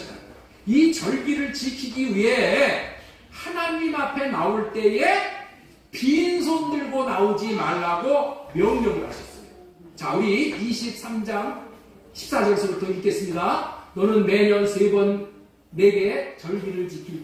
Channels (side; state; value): both; identical; correlation 1.00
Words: 이 절기를 지키기 위해 하나님 앞에 나올 때에 빈손 들고 나오지 말라고 명령을 하셨어요. 자, 우리 23장 14절부터 읽겠습니다. 너는 매년 3번 내게 절기를